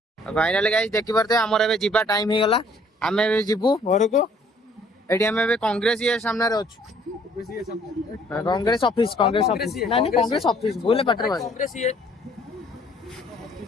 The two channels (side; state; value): both; normal; correlation 0.60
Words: फाइनली गाइस देखि परते हमर एबे जीबा टाइम हे गला हमें एबे जीबू घर को एडी हमें एबे कांग्रेस ये सामने रे अछु कांग्रेस ऑफिस नहीं कांग्रेस ऑफिस बोले पटर भाई कांग्रेस ये